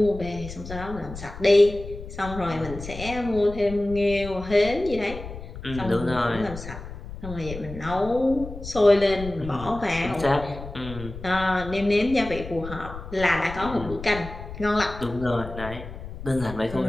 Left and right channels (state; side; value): noise; left; rumble, 11 dB below the sound